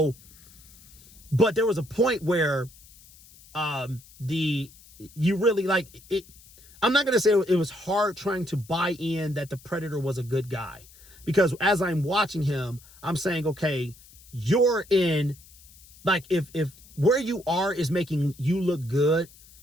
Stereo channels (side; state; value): left; noise; hiss, 24 dB below the sound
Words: but there was a point where you really, like, it, I'm not going to say it was hard trying to buy in that the Predator was a good guy, because as I'm watching him, I'm saying, okay, you're in, like, if where you are is making you look good,